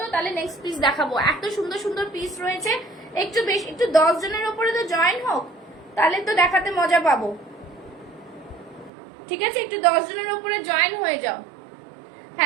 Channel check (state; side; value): drops out; left; at 8.9 s